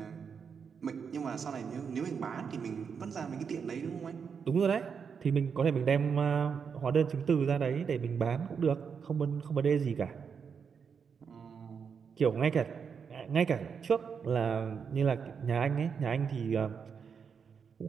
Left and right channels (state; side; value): quieter; left; 6.4 dB